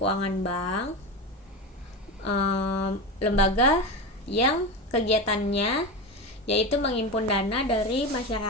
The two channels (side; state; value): both; normal; correlation 0.21